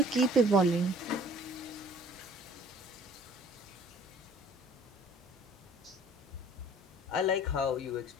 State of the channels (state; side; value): normal; both; correlation 0.52